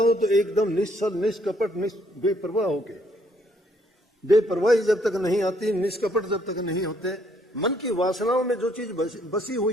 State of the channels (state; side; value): normal; both; correlation 0.68